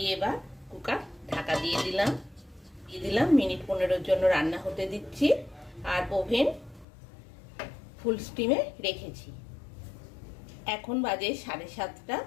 এবার কুকার ঢাকা দিয়ে দিলাম। মিনিট 15 জন্য রান্না হতে দিচ্ছি, আর ওভেন ফুল স্টিমে রেখেছি। এখন বাজে 7:30,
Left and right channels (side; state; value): right; drops out; at 6.9 s